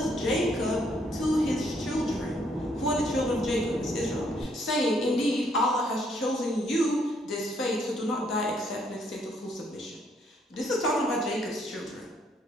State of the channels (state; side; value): normal; both; correlation 0.70